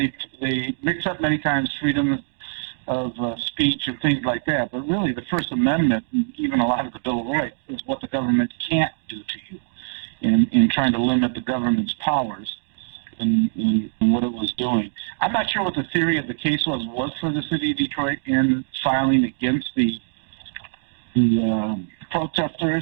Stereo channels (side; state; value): left; silent; digital silence